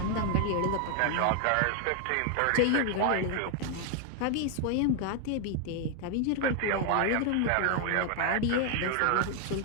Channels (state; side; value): different; both; correlation 0.00